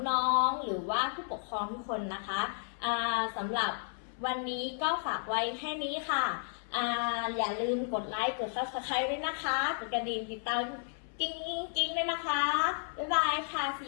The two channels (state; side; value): silent; right; 56 dB below the other